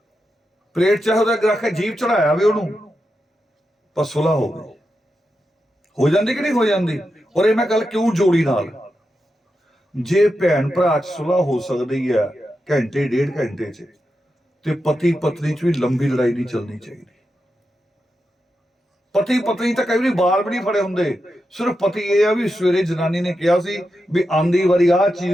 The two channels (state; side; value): normal; both; correlation 0.88